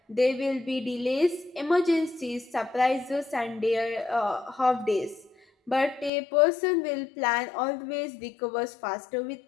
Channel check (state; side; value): drops out; right; at 6.1 s